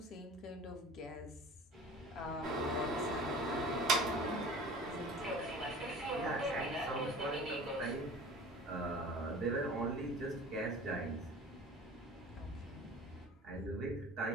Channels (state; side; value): normal; both; correlation 0.42